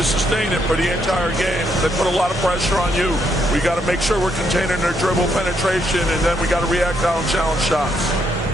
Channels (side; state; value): both; normal; correlation 0.75